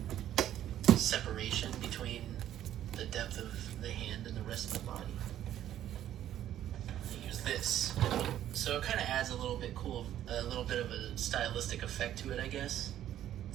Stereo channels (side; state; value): left; quieter; 11.7 dB